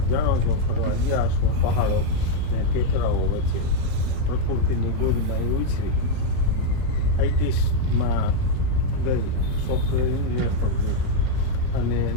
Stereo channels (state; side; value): different; both; correlation 0.01